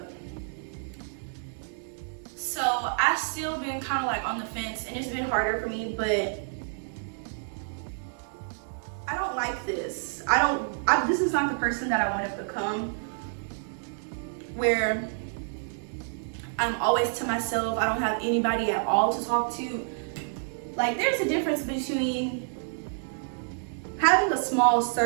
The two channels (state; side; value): silent; left; 59 dB below the other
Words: So I've still been kind of like on the fence, and it's been harder for me, but I don't like this. This is not the person that I want to become, where I'm always to myself. I don't have anybody at all to talk to. Like, there's a difference between having a small